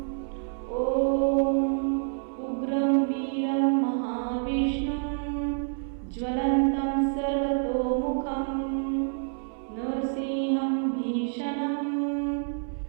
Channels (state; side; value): silent; left; 60 dB below the other